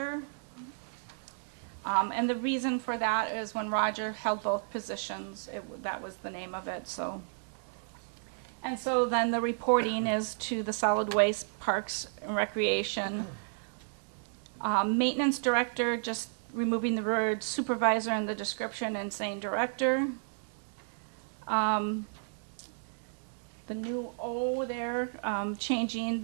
And the reason for that is when Roger held both positions, that was the name of it. So, and so then the reporting is to the Solid Waste, Parks and Recreation. Maintenance Director, just removing the word supervisor in the description and saying director. The new O there, changing,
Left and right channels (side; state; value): left; silent; digital silence